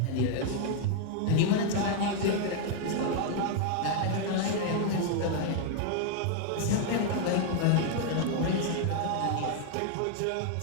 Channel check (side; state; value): both; different; correlation 0.00